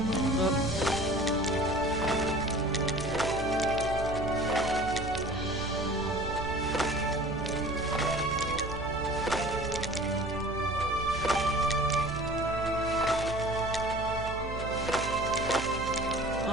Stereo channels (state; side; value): noise; right; hum, 8 dB below the sound